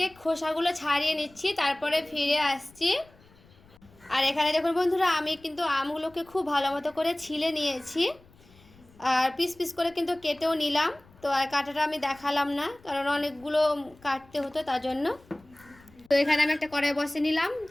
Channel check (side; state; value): left; noise; rumble, 27 dB below the sound